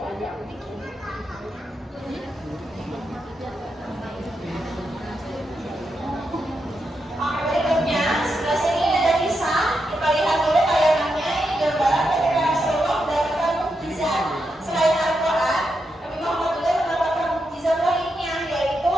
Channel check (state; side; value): normal; both; correlation 0.84